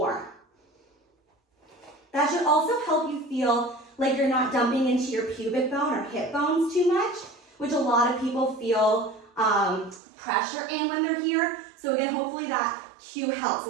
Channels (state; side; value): drops out; left; at 10.0 s